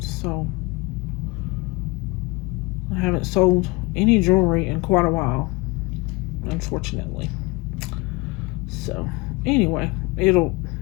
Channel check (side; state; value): right; quieter; 25.5 dB